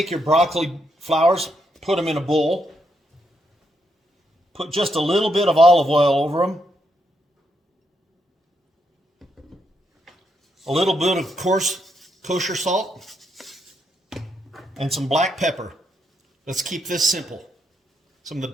your broccoli flowers, put them in a bowl. Put just a little bit of olive oil over them. A little bit of coarse kosher salt. And some black pepper. Let's keep this simple. Some of the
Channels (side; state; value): both; normal; correlation 0.79